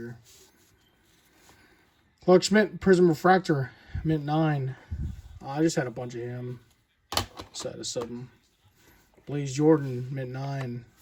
Clark Schmidt, Prism Refractor, mint 9. I just had a bunch of him. So I had to sub him. Blaze Jordan, mint 9.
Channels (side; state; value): both; identical; correlation 1.00